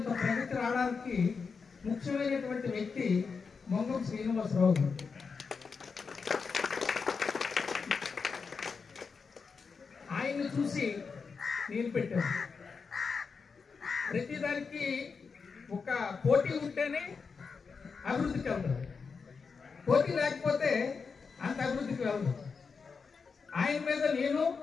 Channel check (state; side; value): quieter; right; 5.2 dB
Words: ప్రగతి రావడానికి ముఖ్యమైనటువంటి వ్యక్తి మంగం శ్రీనివాసరావు గారు. ఆయన్ని చూసి నేను పెట్టాను. ప్రతిదానికి ఒక పోటీ ఉంటేనే అభివృద్ధికి వెళ్తారు, పోటీ లేకపోతే అంత అభివృద్ధికి వెళ్తారు. ఆయన మీద నేను,